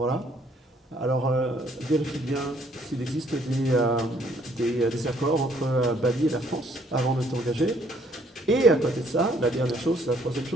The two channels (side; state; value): both; normal; correlation 0.64